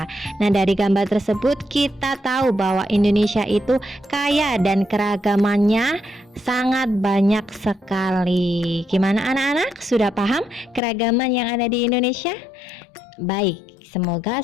Nah, dari gambar tersebut kita tahu bahwa Indonesia itu kaya dan keragamannya sangat banyak sekali. Gimana anak-anak? Sudah paham keragaman yang ada di Indonesia? Baik, semoga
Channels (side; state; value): right; drops out; at 10.8 s